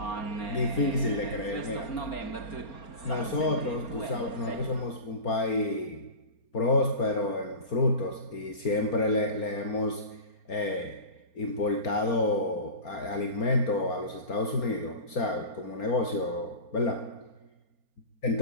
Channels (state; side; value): late; right; 4.3 ms